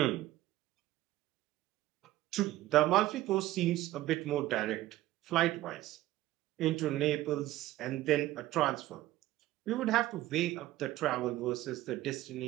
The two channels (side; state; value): left; quieter; 15.6 dB